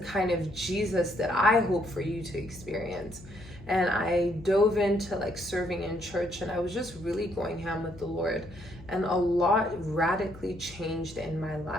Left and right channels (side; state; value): left; noise; hum, 18 dB below the sound